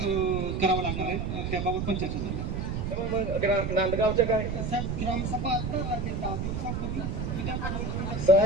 लागणार आहे, त्याबाबत पण चर्चा झाली. नांदगावचं काय ग्रामसभा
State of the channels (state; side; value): noise; right; rumble, 2 dB below the sound